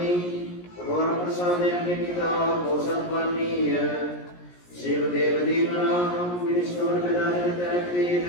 ඔබ වර ප්‍රසාදයෙන් නිකිතා පෝසත් වන්නීය. සියලු දේව දීමනා මිනිස්සුන්ට බෙදා දෙන තැනකදීද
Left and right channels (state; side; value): late; right; 17 ms